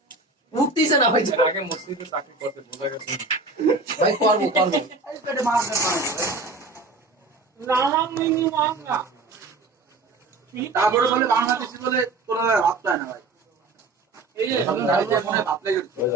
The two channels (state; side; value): quieter; left; 3.5 dB